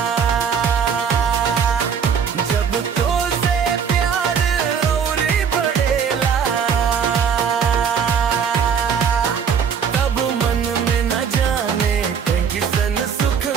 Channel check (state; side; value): quieter; left; 7.0 dB